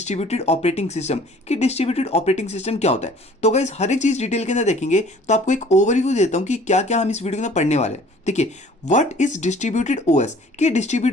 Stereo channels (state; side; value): normal; both; correlation 0.52